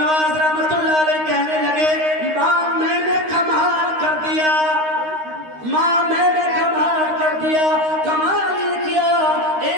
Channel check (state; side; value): late; left; 13 ms